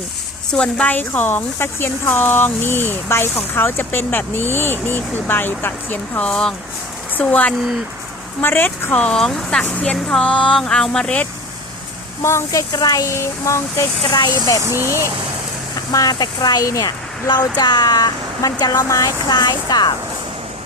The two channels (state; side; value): noise; left; hum, 26 dB below the sound